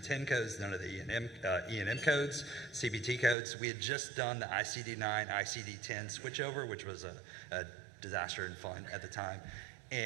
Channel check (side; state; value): left; drops out; at 3.4 s